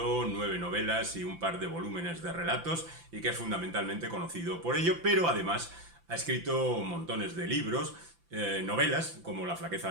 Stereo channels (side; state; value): left; late; 5.9 ms